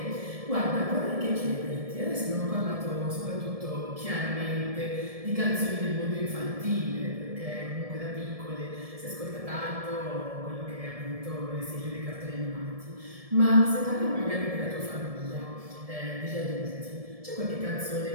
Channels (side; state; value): left; late; 1.7 ms